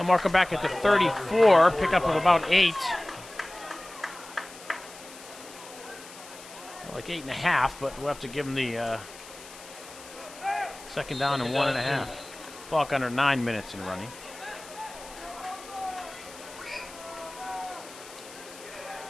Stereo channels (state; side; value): noise; left; hiss, 17 dB below the sound